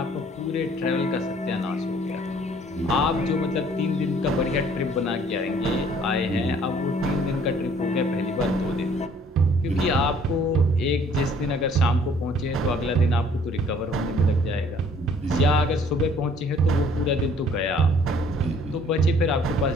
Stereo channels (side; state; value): both; normal; correlation 0.58